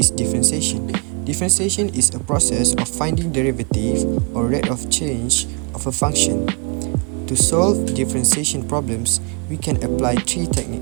differentiation? Differentiation is a process of finding derivative or rate of change of a function. To solve differentiation problems, we can apply three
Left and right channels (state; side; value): quieter; left; 34.1 dB